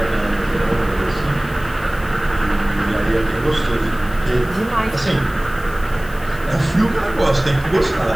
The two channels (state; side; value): noise; left; hiss, 21 dB below the sound